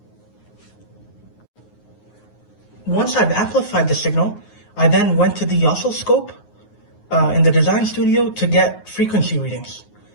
Once I've amplified the signal, I then went to the oscilloscope in the design studio to get frequency readings.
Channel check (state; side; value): late; right; 9.5 ms